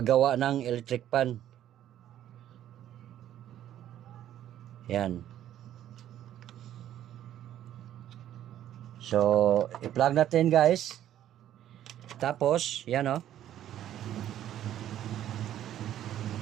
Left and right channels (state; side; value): quieter; left; 11.7 dB